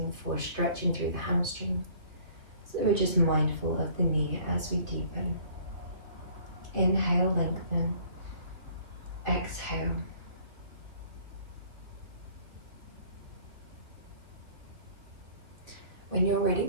for stretching through the hamstring. So we're just mindful of the knee as we deepen. Inhale, lengthen. Exhale. When you're ready,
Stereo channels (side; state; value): left; late; 2.8 ms